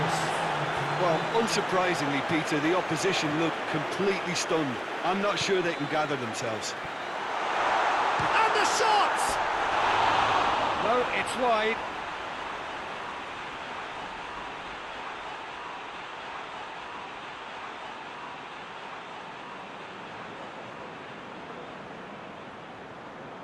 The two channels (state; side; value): identical; both; correlation 1.00